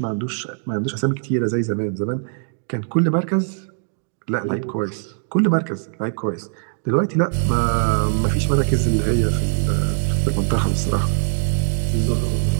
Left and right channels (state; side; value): silent; left; digital silence